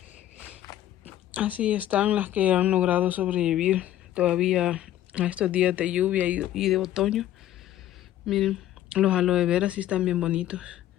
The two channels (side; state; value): right; quieter; 12.8 dB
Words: Así están las que han logrado sobrevivir todavía a estos días de lluvia y de otoño. Miren, los aloe vera sí están bien bonitos.